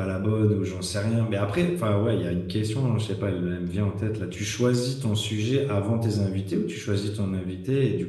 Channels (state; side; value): identical; both; correlation 1.00